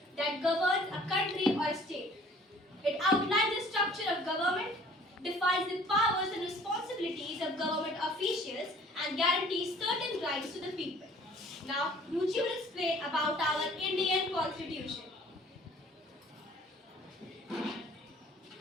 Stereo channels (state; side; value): normal; both; correlation 0.53